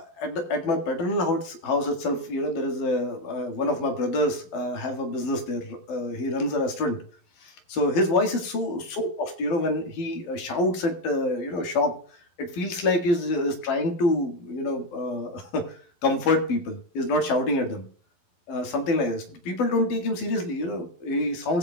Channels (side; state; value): right; late; 11 ms